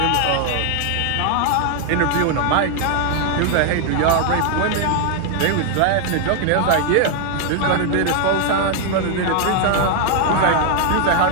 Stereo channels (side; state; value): both; different; correlation 0.00